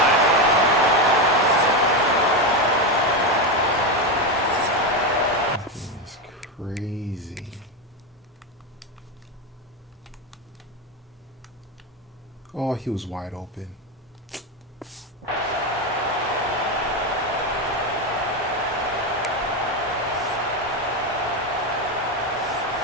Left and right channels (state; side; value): normal; both; correlation 0.12